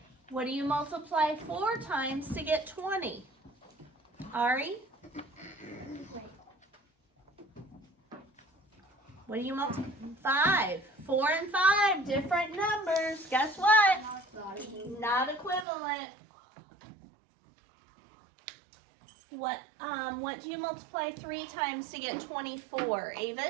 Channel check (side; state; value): left; drops out; at 15.7 s